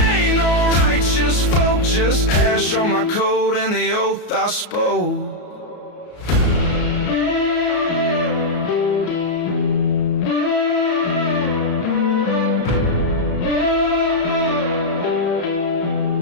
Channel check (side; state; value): right; late; 33 ms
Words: no righteous folk, just ash on my coat and the oath I spoke.